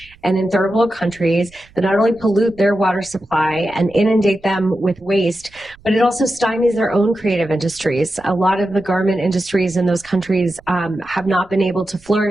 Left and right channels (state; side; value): noise; right; rumble, 26 dB below the sound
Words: and in third world countries that not only pollute their water supply and inundate them with waste, but it also stymies their own creative industries. A lot of the garment industries in those countries have not been able to